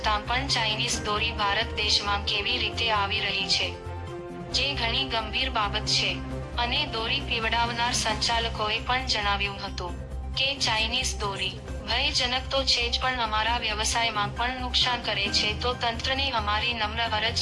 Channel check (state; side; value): identical; both; correlation 1.00